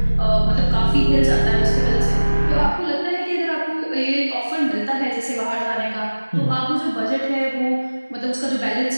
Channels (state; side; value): inverted; both; correlation -1.00